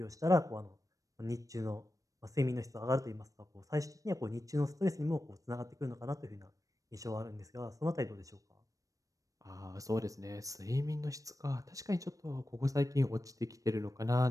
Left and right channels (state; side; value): late; left; 0.16 ms